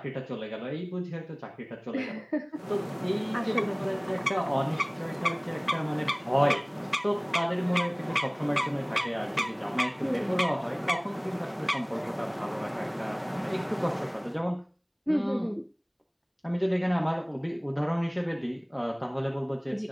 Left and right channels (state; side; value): identical; both; correlation 1.00